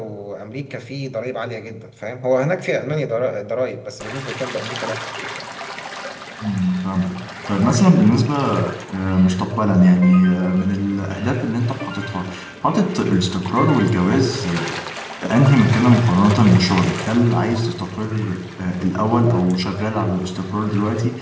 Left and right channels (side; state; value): both; identical; correlation 1.00